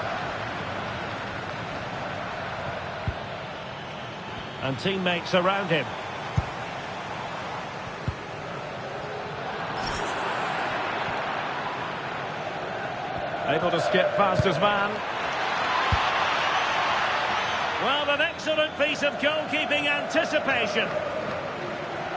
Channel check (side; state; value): both; identical; correlation 1.00